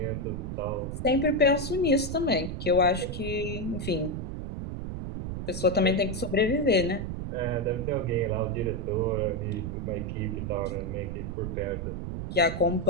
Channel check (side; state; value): right; noise; rumble, 5 dB below the sound